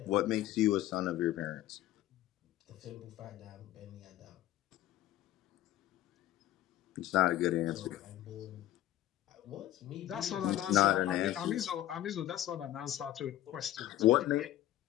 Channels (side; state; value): right; quieter; 13.8 dB